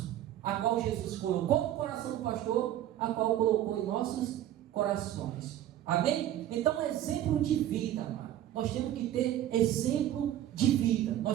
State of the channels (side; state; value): left; quieter; 12.3 dB